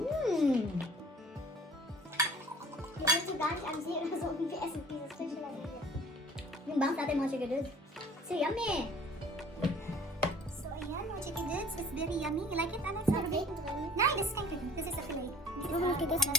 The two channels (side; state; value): both; normal; correlation 0.50